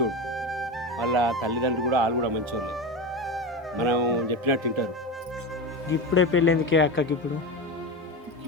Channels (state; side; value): normal; both; correlation 0.22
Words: వాళ్ళ తల్లిదండ్రులు కూడా వాళ్ళు కూడా మంచోళ్ళు. మనం చెప్పినట్టు తింటారు. ఇప్పుడే పెళ్ళి ఎందుకే అక్కకి?